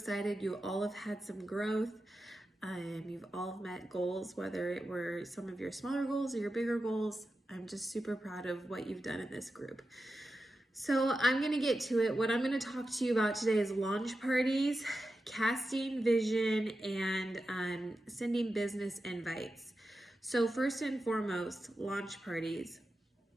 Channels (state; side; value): normal; both; correlation 0.91